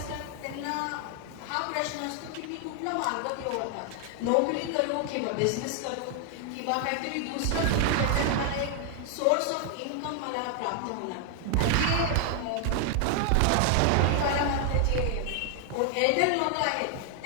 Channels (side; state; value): both; different; correlation 0.00